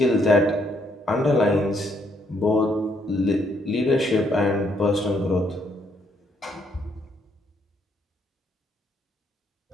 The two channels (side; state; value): both; normal; correlation 0.71